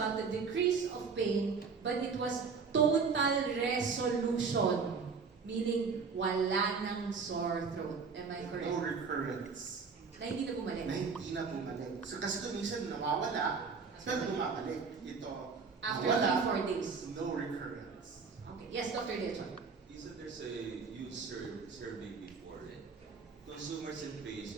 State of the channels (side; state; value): left; quieter; 5.2 dB